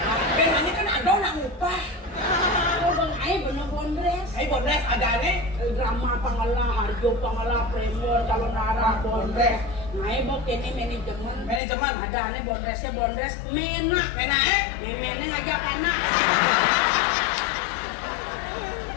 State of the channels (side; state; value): right; drops out; at 11.6 s